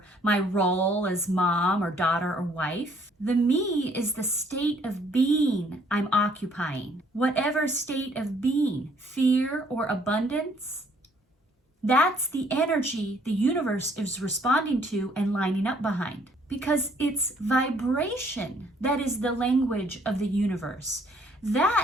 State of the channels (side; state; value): both; normal; correlation 0.63